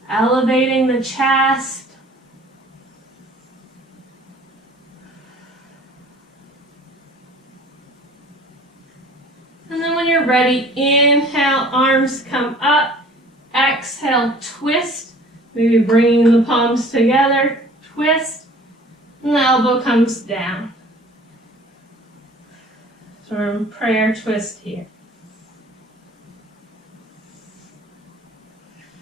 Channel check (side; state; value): both; normal; correlation 0.49